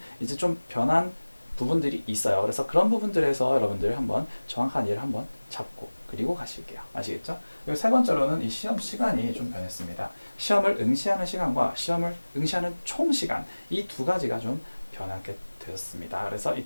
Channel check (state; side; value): inverted; both; correlation -1.00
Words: 이제 좀 변한 부분들이 있어요. 그래서 그런 부분들에서 여러분들 한번 정확한 이해를 한번 잡고 그리고 가실게요. 아시겠죠? 그리고 세 번째로는 이 시험 시간이 좀 변했습니다. 시험을 응시하는 시간과 시험을 응시하는 총 시간 이 두 가지가 좀 변하게 되었습니다. 그래서 이